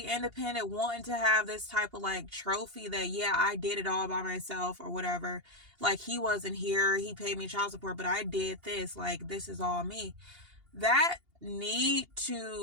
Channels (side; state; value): left; late; 2.8 ms